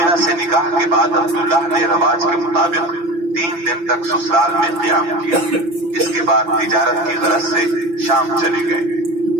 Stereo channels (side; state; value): left; late; 5.9 ms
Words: سے نکاح کے بعد عبداللہ نے رواج کے مطابق 3 دن تک سسرال میں قیام کیا۔ اس کے بعد تجارت کی غرض سے شام چلے گئے۔